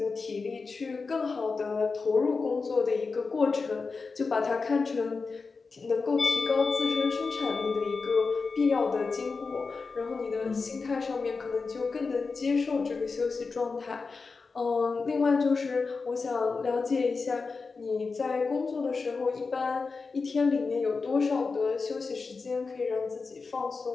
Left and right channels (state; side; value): quieter; right; 4.5 dB